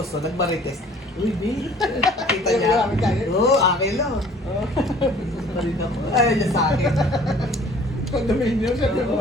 nagmarites. Uy, babe. Nakita niya. Oo, Angelo. Balik ako. Ayaw niya sa akin. Condominium, sabi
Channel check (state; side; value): normal; both; correlation 0.52